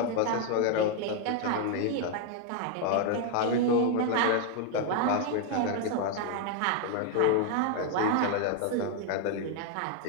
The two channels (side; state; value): both; different; correlation 0.00